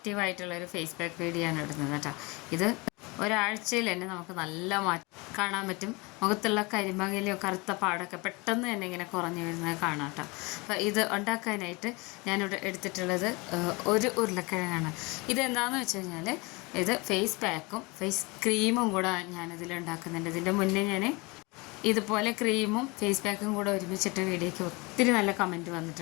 ഫേസ് പാക്ക് വീഡിയോ ആണ് ഇടുന്നത് കേട്ടോ. ഇത് ഒരാഴ്ചയിൽ തന്നെ നമുക്ക് നല്ല മാറ്റം കാണാൻ പറ്റും. മുഖത്തുള്ള കരിമങ്ങലോ കറുത്ത പാടൊക്കെ പെട്ടെന്ന് തന്നെ ഇങ്ങനെ കുറഞ്ഞു വരുന്നത് കാണാം കേട്ടോ. അപ്പോൾ ഇത് ഉണ്ടാക്കാനായിട്ട് ഞാനിവിടെ എടുത്തിട്ടുള്ളത് ഒരു ഉരുളക്കിഴങ്ങാണ്. ഇതെന്താണെന്ന് വെച്ച് കഴിഞ്ഞാൽ ഇത് ഫേസ് പാക്കും ഫേസ് ക്രീമും കൂടെ ഞാനിതിൽ ഉണ്ടാക്കുന്നുണ്ട്. ഇതിൻ്റെ മുന്നേ ഞാൻ ഇതുപോലെ ക്രീമും ഫേസ് പാക്കും കൂടെ ഒരുമിച്ചിട്ട് വീഡിയോയ്ക്ക് ഒത്തിരി നല്ല കമൻറ്റ്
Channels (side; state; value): right; quieter; 26.4 dB